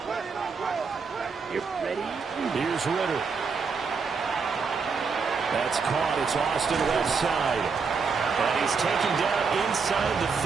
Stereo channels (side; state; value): left; quieter; 5.2 dB